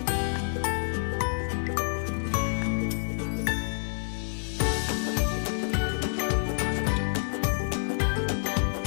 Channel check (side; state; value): right; silent; digital silence